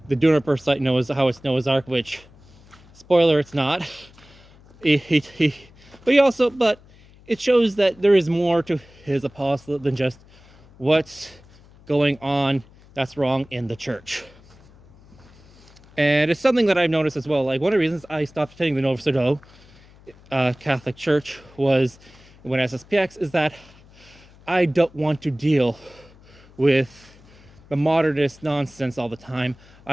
the Juniper site, how it's Noah's Ark, which, spoiler, it's not. But it shows that there is more to his apostolate than just what's going on that's wrong in the church. And it's something that I've noticed as well. Like, one of the reasons I stopped attending the Novus Ordo Catholic Church was when SSPX is that I don't want to deal with the modernist nonsense all the time.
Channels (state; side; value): noise; left; hum, 25 dB below the sound